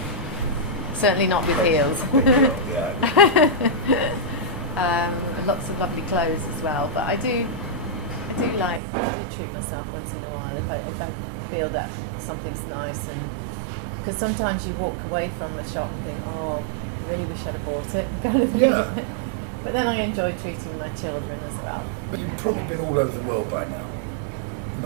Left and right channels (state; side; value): drops out; left; at 8.8 s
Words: Certainly not with heels. Lots of lovely clothes as well, but I do treat myself once in a while if I feel that something's nice, and because sometimes you walk away from a shop and think, oh, really wish I'd have bought it, kind of thing. Yeah. But then I enjoy treating my children as well. But you've probably been all over the world by now.